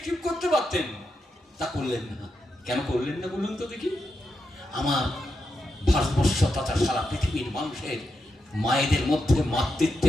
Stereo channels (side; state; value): both; normal; correlation 0.86